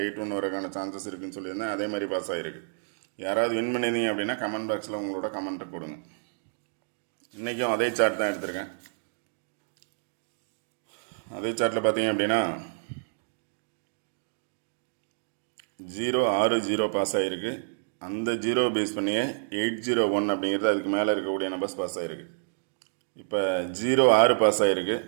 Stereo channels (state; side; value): silent; left; digital silence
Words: 8-1 வரக்கான சான்சஸ் இருக்குன்னு சொல்லியிருந்தேன். அதே மாதிரி பாஸ் ஆகிருக்கு. யாராவது வின் பண்ணியிருந்தீங்க அப்படின்னா கமெண்ட் பாக்ஸில் உங்களோட கமெண்ட்டை கொடுங்க. இன்றைக்கும் அதே சார்ட் தான் எடுத்திருக்கேன். அதே சார்ட்டில் பார்த்தீங்க அப்படின்னா 0-6-0 பாஸ் ஆகிருக்கு. அந்த 0 பேஸ் பண்ணியே 801 அப்படிங்கிறது அதுக்கு மேலே இருக்கக்கூடிய நம்பர்ஸ் பாஸ் ஆகிருக்கு. இப்போ 0-6 பாஸ் ஆகிருக்கு,